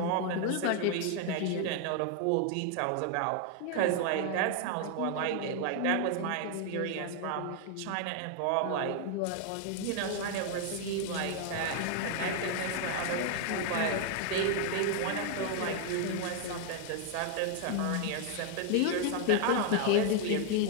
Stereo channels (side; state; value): both; different; correlation 0.00